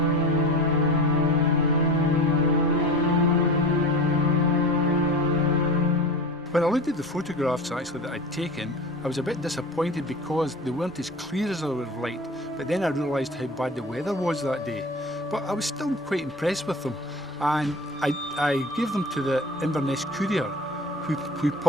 When I looked at the photographs actually that I'd taken, I was a bit disappointed because they weren't as clear as I would have liked, but then I realised how bad the weather was that day. But I was still quite impressed with them, and I gave them to the Inverness Courier, who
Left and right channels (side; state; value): both; normal; correlation 0.33